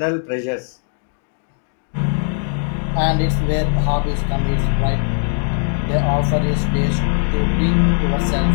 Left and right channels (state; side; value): silent; right; digital silence